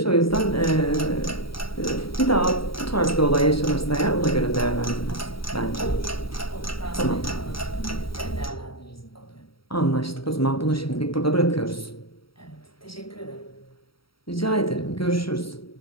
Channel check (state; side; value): late; right; 0.75 ms